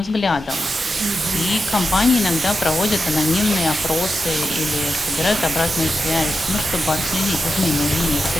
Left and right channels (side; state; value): both; normal; correlation 0.89